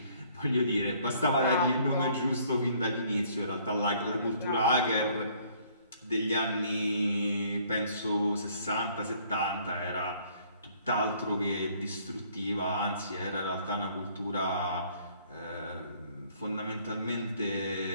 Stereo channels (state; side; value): inverted; both; correlation -0.61